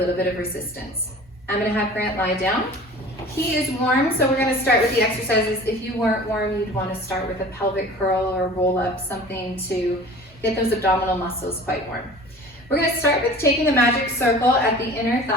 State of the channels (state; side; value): normal; both; correlation 0.42